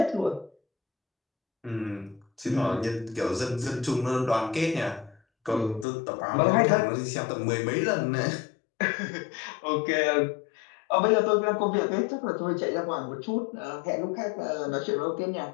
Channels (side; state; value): right; drops out; at 5.9 s